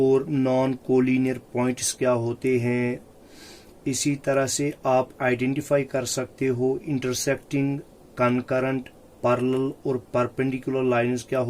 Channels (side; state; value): both; identical; correlation 1.00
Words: नॉन कोलिनियर पॉइंट्स क्या होते हैं। इसी तरह से आप आइडेंटिफाई कर सकते हो इंटरसेक्टिंग, कनकरेंट, पैरेलल और परपेंडिकुलर लाइंस क्या